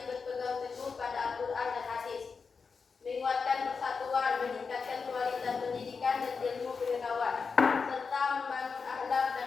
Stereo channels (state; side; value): quieter; right; 5.2 dB